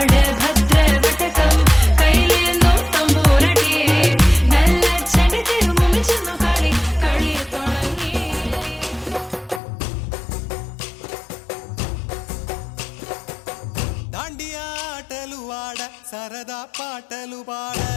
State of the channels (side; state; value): right; drops out; at 9.6 s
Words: ഭദ്രവടകം കൈലേന്തും തമ്പോരട്ടിയെ നല്ല ചെടി തിരുമുമിച്ചെന്നു കളി കളി തുടങ്ങി. దాండియా ఆటలు ఆడ సరదా పాటలు పాడ